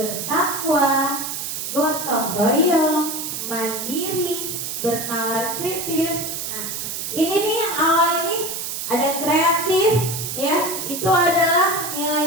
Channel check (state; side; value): noise; right; hiss, 5 dB below the sound